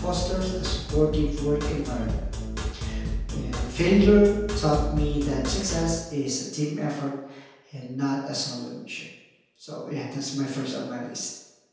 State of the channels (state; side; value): identical; both; correlation 1.00